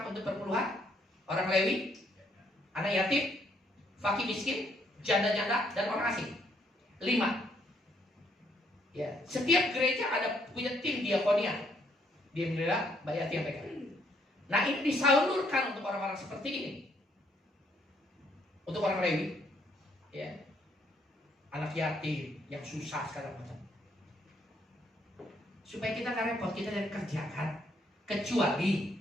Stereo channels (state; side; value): normal; both; correlation 0.70